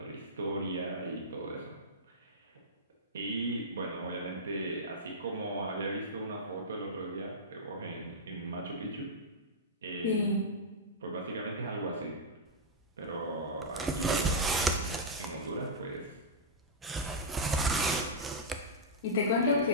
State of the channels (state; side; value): normal; both; correlation -0.10